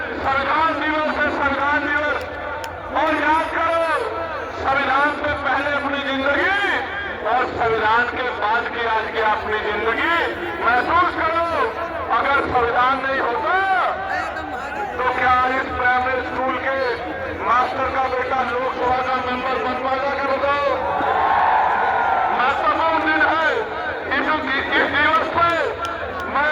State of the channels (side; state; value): both; identical; correlation 1.00